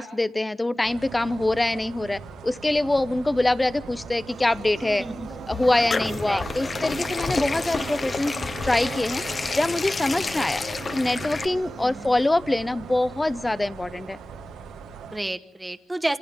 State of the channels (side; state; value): both; normal; correlation 0.97